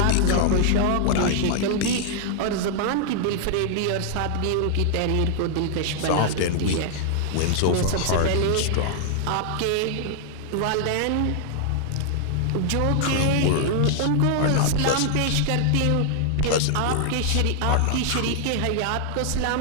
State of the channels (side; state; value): both; different; correlation 0.00